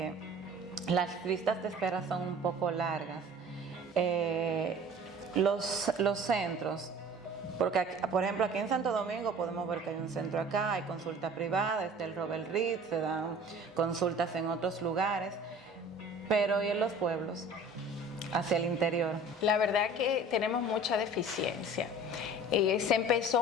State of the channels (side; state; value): both; normal; correlation 0.45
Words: las listas de espera son un poco largas. Los centros, porque por ejemplo aquí en Santo Domingo podemos ver que hay un centro acá, hay consulta privada, está el Robert Reed, se dan consultas en otros lugares, pero ¿y en los pueblos? Hacia el interior. La verdad que tenemos mucha deficiencia. Se empezó